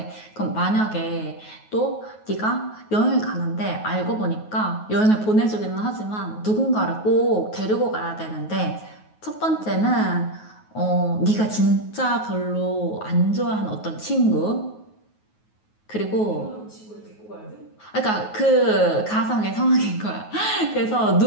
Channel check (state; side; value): late; right; 9.4 ms